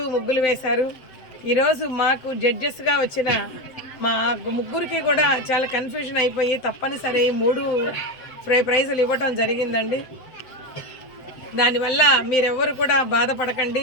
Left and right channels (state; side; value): late; right; 7.8 ms